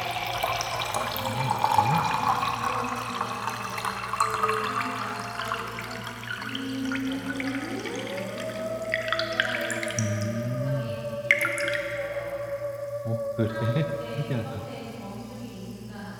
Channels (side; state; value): both; identical; correlation 1.00